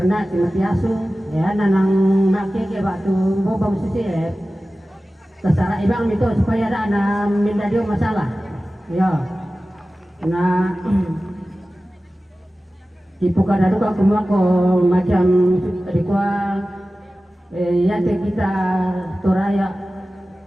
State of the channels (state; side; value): normal; both; correlation 0.96